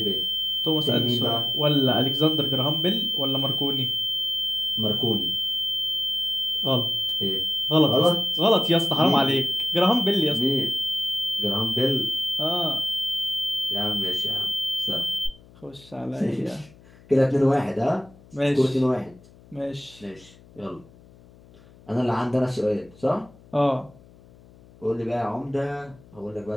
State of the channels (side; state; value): left; noise; hum, 25 dB below the sound